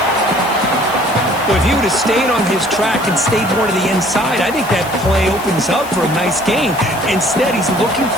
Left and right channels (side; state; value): left; noise; hiss, 16 dB below the sound